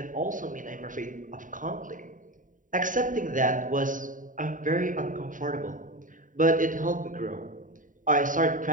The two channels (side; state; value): left; late; 0.38 ms